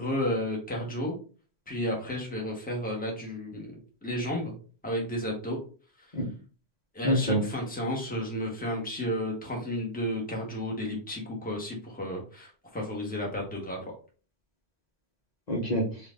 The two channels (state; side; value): normal; both; correlation -0.08